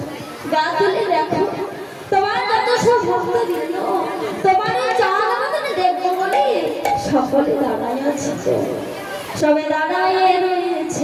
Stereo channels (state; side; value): identical; both; correlation 1.00